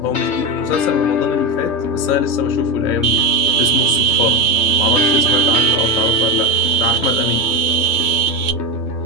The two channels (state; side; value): late; right; 2.2 ms